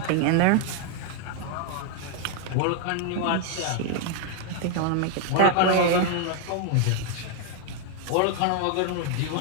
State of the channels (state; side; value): different; both; correlation 0.00